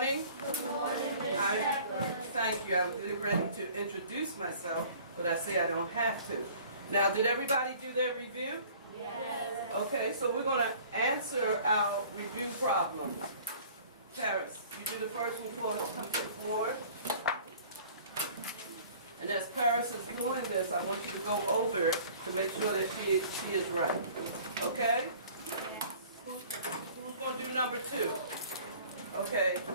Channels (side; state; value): both; inverted; correlation -0.49